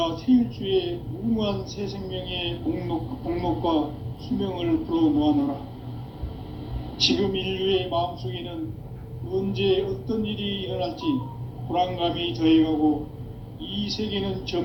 태을 주에 무궁한 새 생명의 복록과 수명을 불어놓아노라. 지금 인류의 마음속에는 언제 어떤 일이 일어날지 불안감이 더해가고 이 세계는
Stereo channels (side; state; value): both; identical; correlation 1.00